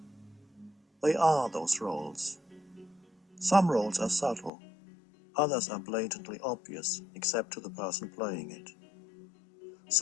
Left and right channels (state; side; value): drops out; right; at 4.5 s